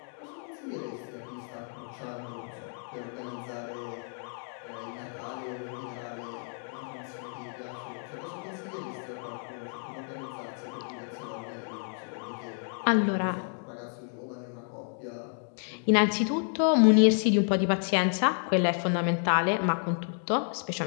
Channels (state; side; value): silent; right; 56 dB below the other